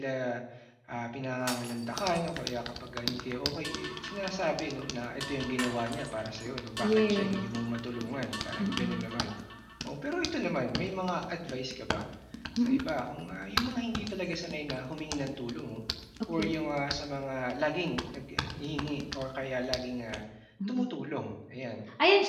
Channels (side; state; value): both; identical; correlation 1.00